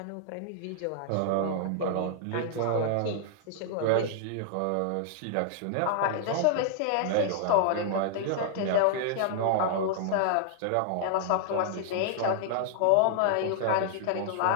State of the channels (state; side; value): different; both; correlation -0.01